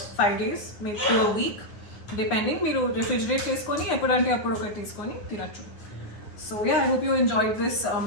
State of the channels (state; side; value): late; right; 9.5 ms